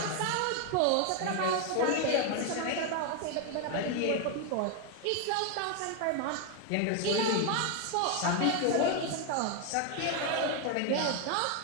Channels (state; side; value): different; both; correlation 0.01